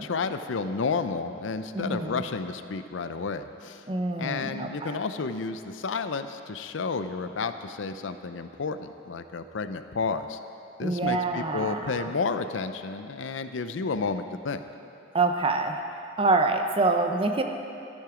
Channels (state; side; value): normal; both; correlation 0.02